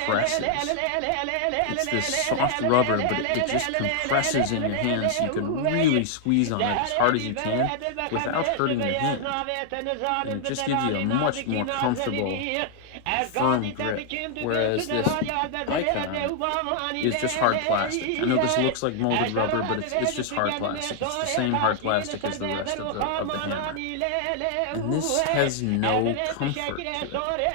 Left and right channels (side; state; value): both; different; correlation 0.00